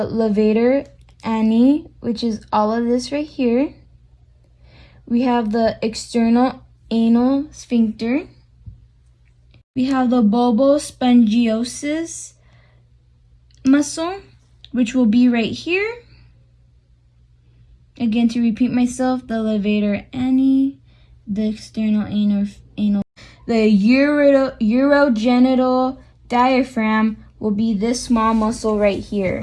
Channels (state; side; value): identical; both; correlation 1.00